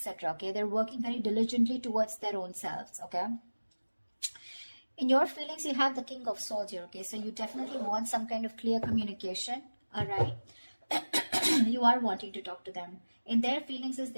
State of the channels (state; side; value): inverted; both; correlation -1.00